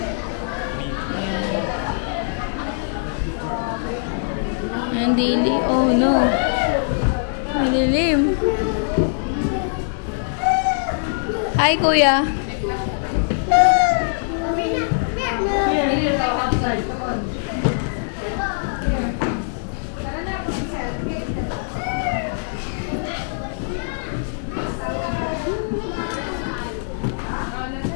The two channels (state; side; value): silent; right; 64 dB below the other